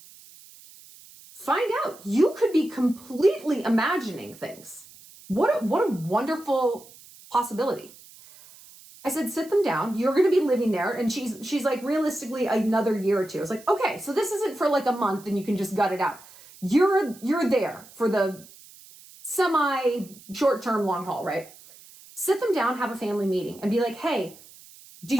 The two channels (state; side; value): noise; right; hiss, 22 dB below the sound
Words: Find out. You could be completely imagining things. What a wonderful possibility. I said, sit them down. You're going to be living there. And she's like, realistically, another year or two. I was like, okay, so this isn't for like a month and you can just gut it out. You're there for the semi short-term long haul, right? Sit them down, have a family meeting and be like, hey,